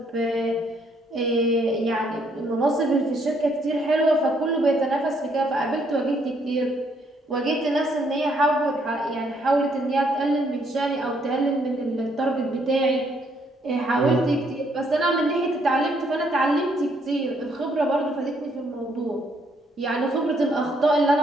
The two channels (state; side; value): normal; both; correlation 0.70